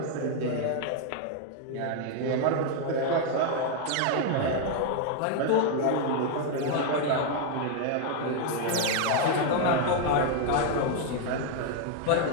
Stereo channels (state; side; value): different; both; correlation 0.00